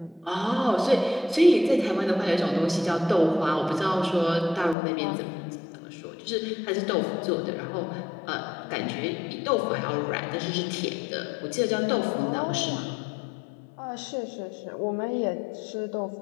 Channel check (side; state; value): right; drops out; at 4.8 s